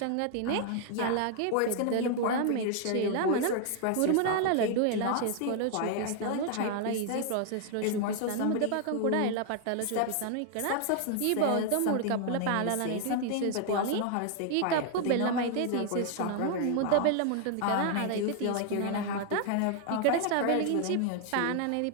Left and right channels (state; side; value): different; both; correlation 0.00